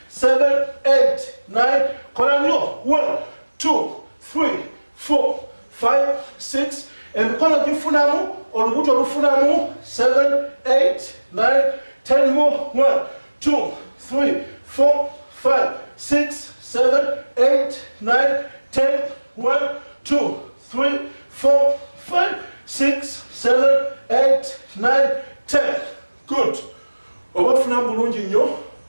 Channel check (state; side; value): inverted; both; correlation -1.00